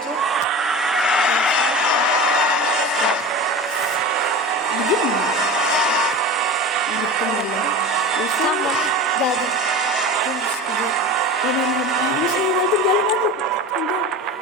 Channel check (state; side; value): normal; both; correlation 0.31